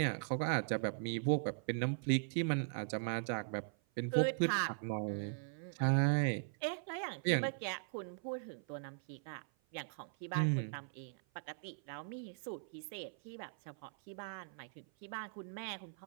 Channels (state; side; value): silent; left; 51 dB below the other